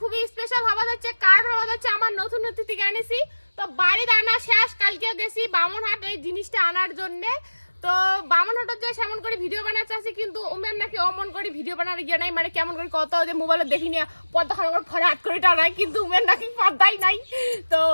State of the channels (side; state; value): both; inverted; correlation -1.00